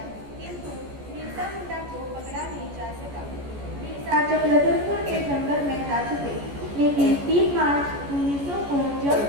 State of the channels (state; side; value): late; left; 14 ms